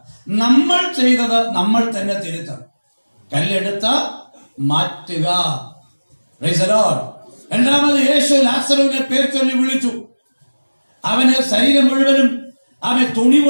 നമ്മൾ ചെയ്തത് നമ്മൾ തന്നെ തിരുത്തണം. കല്ലെടുത്ത മാറ്റുക. Praise the Lord. രണ്ടാമത് യേശു ലാസറുവിനെ പേർ ചൊല്ലി വിളിച്ചു. അവന് ശരീരം മുഴുവനും അവൻ തുണി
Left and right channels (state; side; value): inverted; both; correlation -1.00